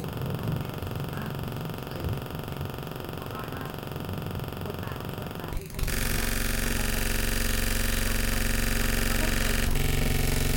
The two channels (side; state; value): both; identical; correlation 1.00